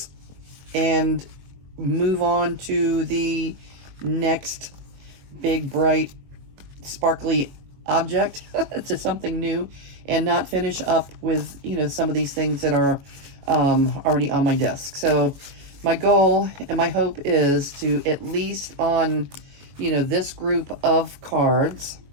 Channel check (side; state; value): left; late; 21 ms